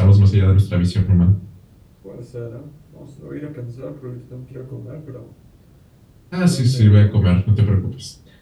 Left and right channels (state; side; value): identical; both; correlation 1.00